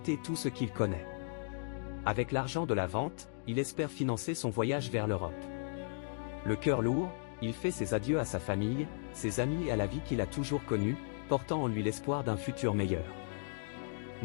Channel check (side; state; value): right; silent; digital silence